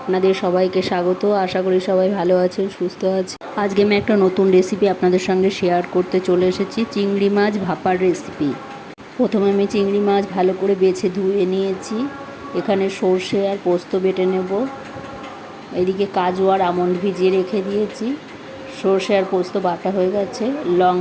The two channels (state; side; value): identical; both; correlation 1.00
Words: আপনাদের সবাইকে স্বাগত। আশা করি সবাই ভালো আছেন, সুস্থ আছেন। আজকে আমি একটা নতুন রেসিপি আপনাদের সঙ্গে শেয়ার করতে চলে এসেছি, চিংড়ি মাছ ভাপার রেসিপি। প্রথমে আমি চিংড়ি মাছ ভালো করে বেছে ধুয়ে নিয়েছি। এখানে সর্ষে আর পোস্ত বেটে নেব। এদিকে কাজু আর আমন্ড ভিজিয়ে রেখে দিয়েছি। সর্ষে আর পোস্ত বাটা হয়ে গেছে।